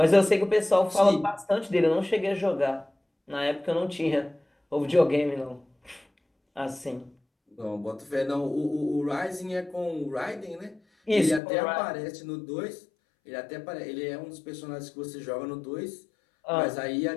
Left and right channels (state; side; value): drops out; right; at 11.4 s